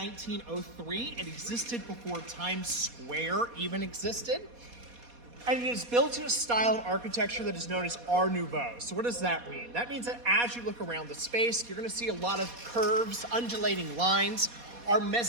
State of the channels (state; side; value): late; left; 4.2 ms